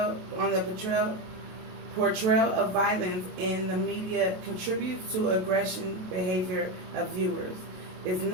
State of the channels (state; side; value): late; left; 27 ms